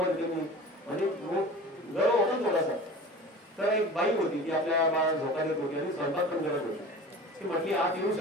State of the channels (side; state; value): both; normal; correlation 0.38